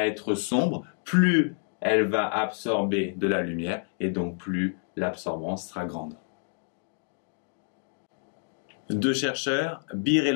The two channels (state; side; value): silent; right; 59 dB below the other